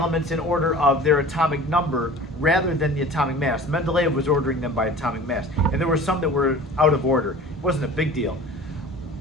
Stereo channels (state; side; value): normal; both; correlation 0.41